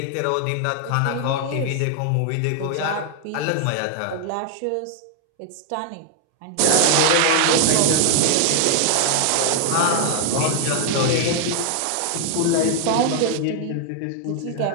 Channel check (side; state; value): both; different; correlation 0.00